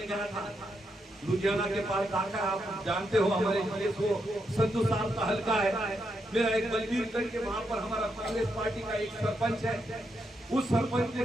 गया था, लुधियाना के पास दाखा, आप जानते हो हमारे जिले को संधू साहब का हल्का है। मेरा एक बलबीरगंज के वहां पर हमारा कांग्रेस पार्टी का एक सरपंच है, उस सरपंच ने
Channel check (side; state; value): both; normal; correlation 0.81